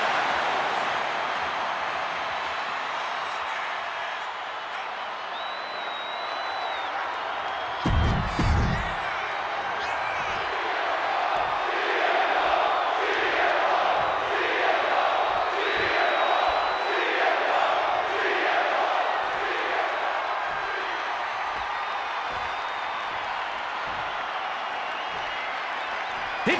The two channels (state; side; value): identical; both; correlation 1.00